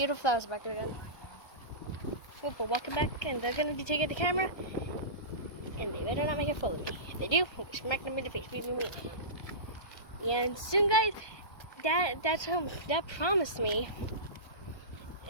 flowers back there again. Oh, we're walking back, and they're gonna be taking the camera, and they better not make a fool of me. If they do, we'll smack them in the face. And soon, guys, Dad promised me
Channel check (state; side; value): late; right; 1.2 ms